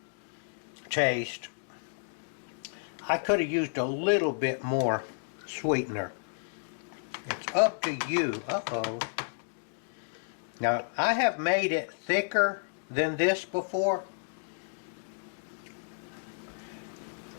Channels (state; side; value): silent; right; digital silence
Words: taste, I could have used a little bit more sweetener. It's up to you. Uh-oh. Now, I have made it thicker than this before.